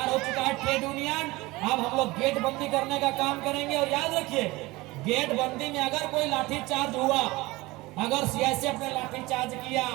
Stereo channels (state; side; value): quieter; left; 21.2 dB